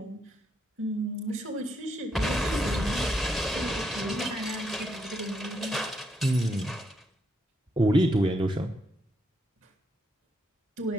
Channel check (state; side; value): normal; both; correlation 0.78